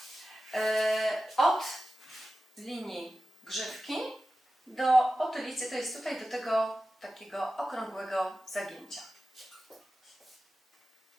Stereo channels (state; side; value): normal; both; correlation 0.94